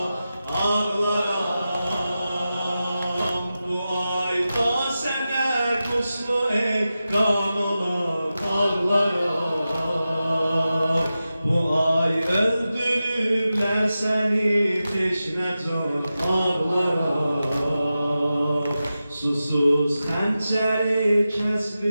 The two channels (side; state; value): both; inverted; correlation -0.93